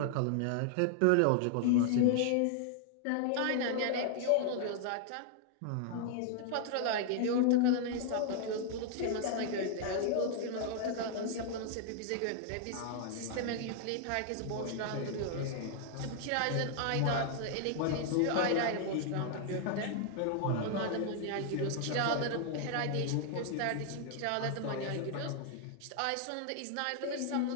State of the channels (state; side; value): different; both; correlation 0.00